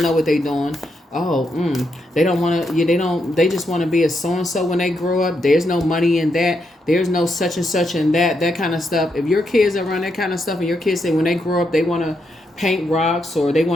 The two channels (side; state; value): both; normal; correlation 0.81